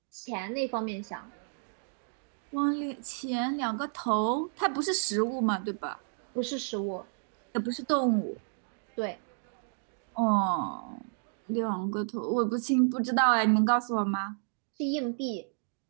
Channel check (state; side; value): silent; left; digital silence